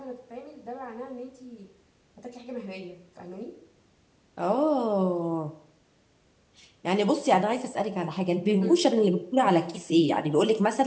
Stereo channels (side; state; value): both; identical; correlation 1.00